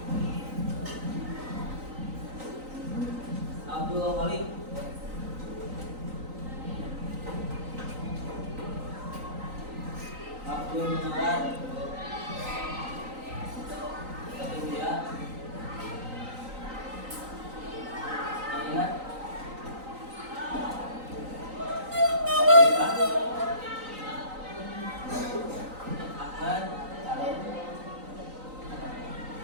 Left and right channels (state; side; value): late; left; 3.9 ms